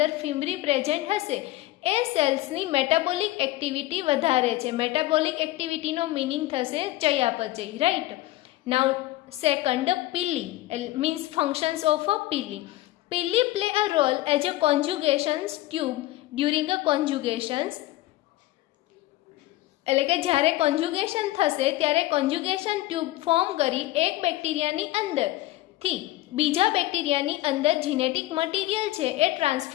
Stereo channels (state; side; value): quieter; right; 16.8 dB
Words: ફિમ્બ્રી પ્રેઝન્ટ હશે એ સેલ્સની મેટાબોલિક એક્ટિવિટી વધારે છે. મેટાબોલિક એક્ટિવિટીનો મિનિંગ થશે ચયાપચય, right. Now second, pili means functions of a pili. Pili play a role as a conjugations tube during a conjugations. એટલે કે જ્યારે કોન્જ્યુગેશન થશે ત્યારે કોન્જ્યુગેશન ટ્યુબ ફોર્મ કરી એક બેક્ટેરિયાની અંદરથી બીજા બેક્ટેરિયાની અંદર જીનેટિક મટીરિયલ છે એ